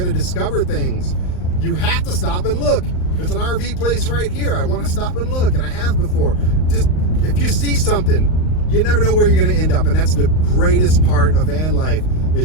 to discover things. You have to stop and look. There's an RV place right here. I want to stop and look, and I have before. Just if you see something, you never know where you're going to end up, and that's the greatest part of van life,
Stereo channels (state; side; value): late; right; 38 ms